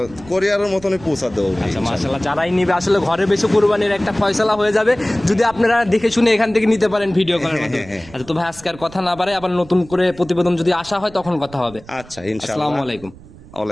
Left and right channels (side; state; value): right; noise; rumble, 20 dB below the sound